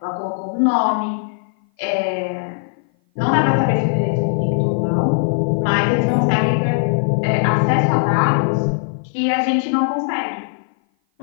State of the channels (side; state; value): right; silent; 56 dB below the other